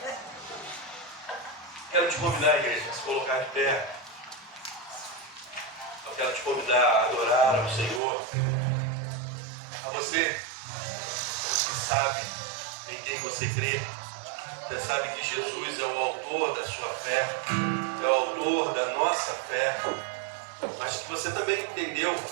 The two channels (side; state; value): left; drops out; at 8.0 s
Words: Quero te convidar, igreja, a se colocar de pé. Eu quero te convidar a adorar ao Senhor. A você que sabe em quem você crê. Você sabe que Jesus é o autor da sua fé, é o autor da nossa fé, mas que você também entendeu